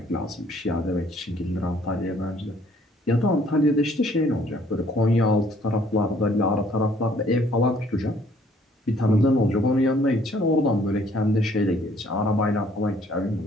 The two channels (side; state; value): both; normal; correlation 0.61